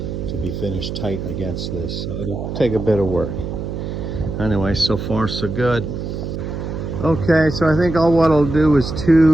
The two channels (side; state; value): right; noise; hum, 5 dB below the sound